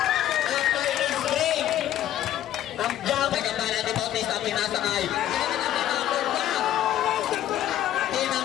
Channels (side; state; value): right; quieter; 12.2 dB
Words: After his break. Ang jump. Ay kampana ni Bautista. Pinasa kay.